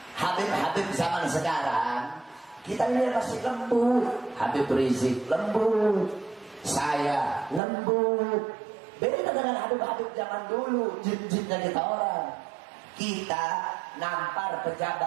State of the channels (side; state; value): left; drops out; at 7.6 s